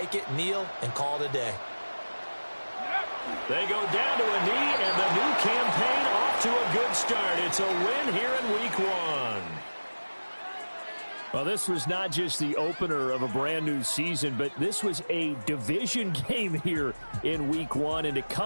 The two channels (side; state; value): both; inverted; correlation -1.00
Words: it, kneel, and call it a day. They go down to a knee, and the new campaign off to a good start. It's a win here in week 1. Well, this was not just the opener of a brand new season, but this was a division game here in week 1. And to